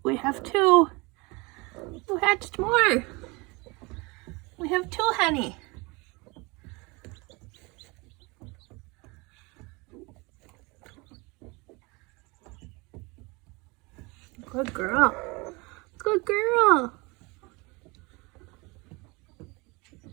we have two. We hatched more. We have two, honey. Good girl. Good girl.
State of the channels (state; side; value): quieter; left; 26.2 dB